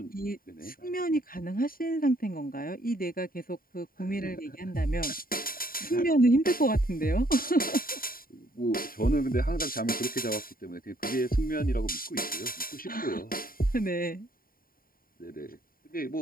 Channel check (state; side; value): late; right; 0.42 ms